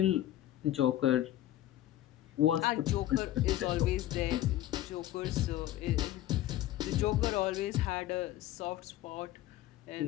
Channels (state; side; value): quieter; right; 13.8 dB